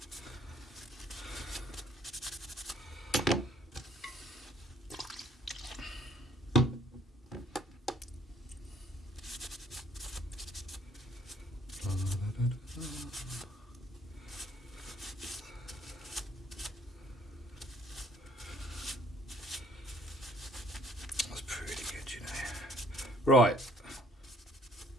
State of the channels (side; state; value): both; normal; correlation 0.60